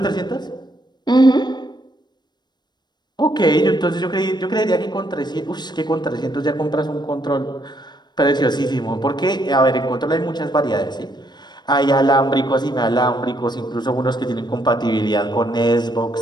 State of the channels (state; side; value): late; right; 0.21 ms